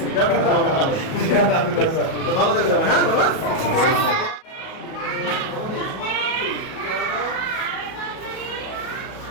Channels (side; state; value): right; late; 37 ms